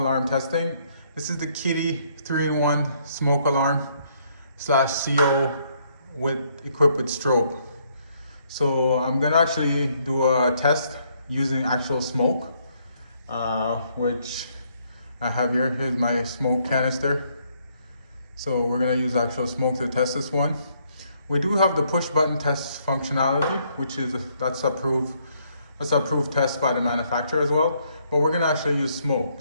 testing. This is the Kitty 3-in-1 smoke alarm slash CO equipped with strobe. So I'm gonna actually do a test using actual smoke, which I have here. Here's my smoke canister. So we're gonna use actual smoke to test this one. We do have the push button test functionality, which is that's approved test by the manufacturer as well. But we're gonna actually use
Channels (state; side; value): inverted; both; correlation -0.70